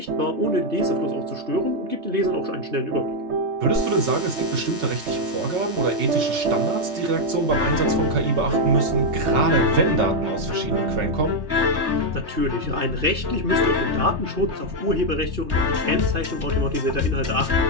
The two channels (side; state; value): left; late; 3.3 ms